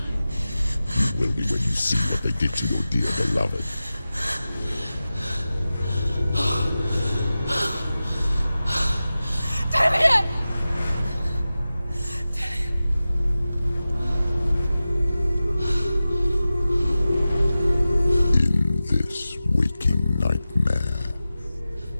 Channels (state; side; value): inverted; both; correlation -0.95